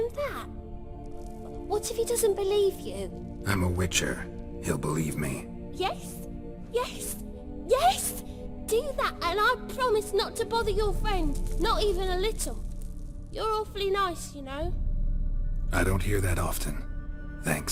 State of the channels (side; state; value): both; identical; correlation 1.00